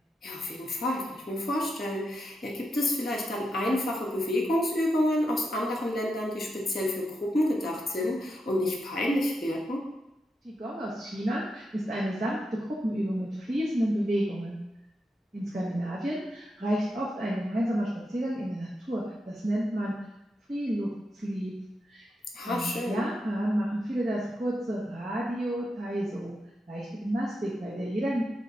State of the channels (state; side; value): normal; both; correlation 0.86